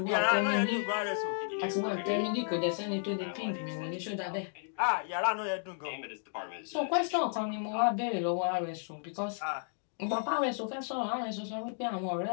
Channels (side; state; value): right; silent; digital silence